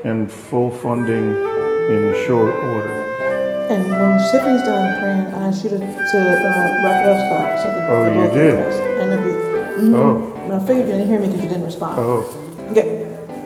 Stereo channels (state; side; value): identical; both; correlation 1.00